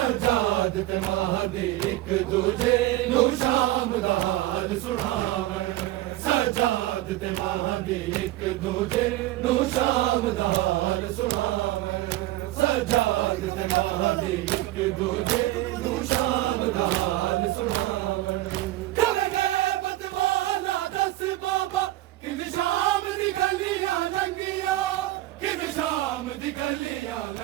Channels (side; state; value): left; quieter; 16.2 dB